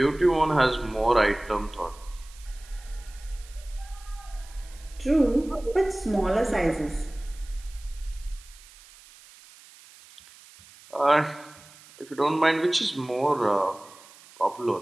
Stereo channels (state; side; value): noise; right; hiss, 22 dB below the sound